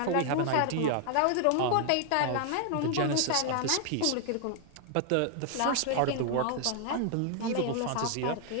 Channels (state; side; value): different; both; correlation 0.00